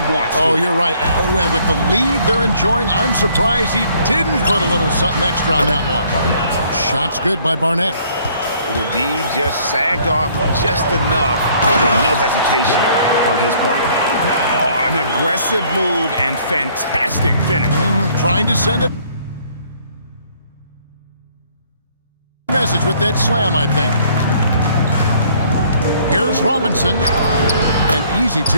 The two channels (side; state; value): both; inverted; correlation -0.61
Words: wants to. Oh, you're right. And with the lead they're enjoying, I'm surprised he didn't put a little something extra on that one. Shot's good by Barnett. The D just sagged off just enough and no hesitation on his part. Oh, an aggressive move and fantastic finish. Trying to send a message with that slam, I think. Here's Robinson. An easy